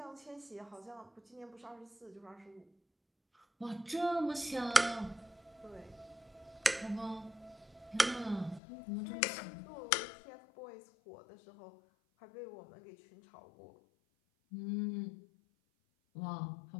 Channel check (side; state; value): right; drops out; at 8.6 s